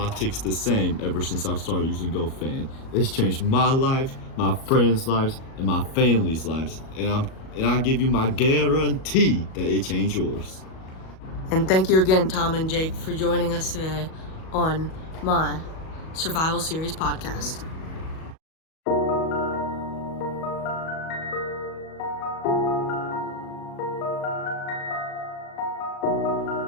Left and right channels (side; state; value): right; late; 37 ms